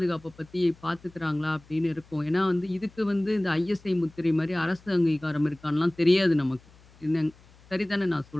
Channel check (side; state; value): left; noise; hum, 27 dB below the sound